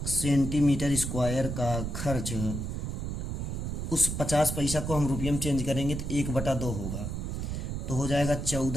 सेंटीमीटर स्क्वायर का खर्च, उस 50 पैसा को हम रुपये में चेंज करेंगे तो 1/2 होगा। तो हो जाएगा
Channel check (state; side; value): noise; right; rumble, 4 dB below the sound